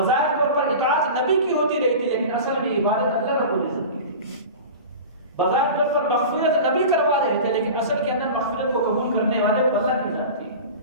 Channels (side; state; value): both; inverted; correlation -0.33